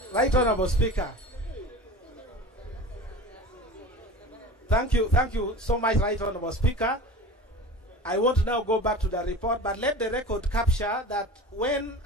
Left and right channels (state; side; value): normal; both; correlation 0.35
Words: Right Honorable Speaker. Thank you so much, Right Honorable Speaker. I want to now go back to the report, but let the record capture that when